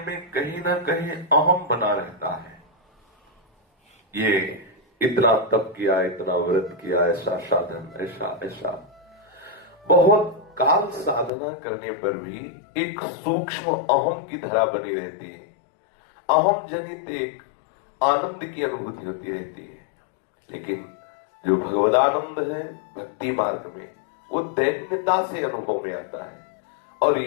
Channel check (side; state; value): right; drops out; at 11.3 s